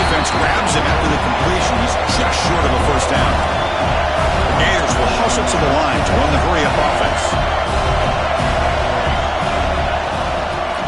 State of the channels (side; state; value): both; identical; correlation 1.00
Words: grabs him after the completion. He's just short of a 1st down. The Gators will hustle to the line to run the hurry-up offense.